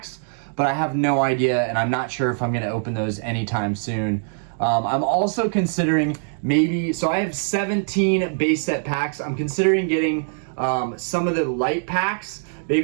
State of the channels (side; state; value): left; silent; digital silence